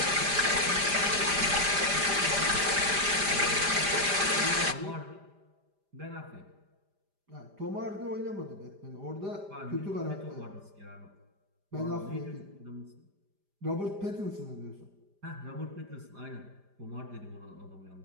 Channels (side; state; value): left; late; 5.0 ms